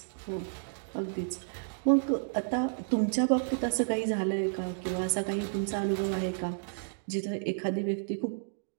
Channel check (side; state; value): left; silent; digital silence